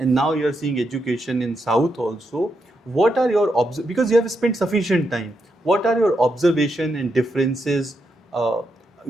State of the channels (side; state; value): both; normal; correlation 0.82